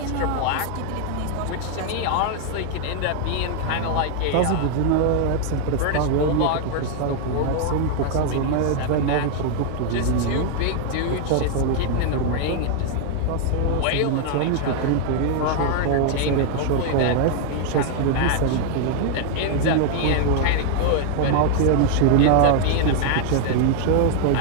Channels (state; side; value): different; both; correlation 0.00